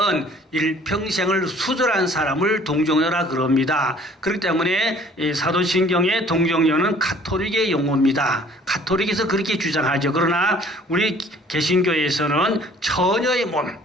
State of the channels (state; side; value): normal; both; correlation 0.54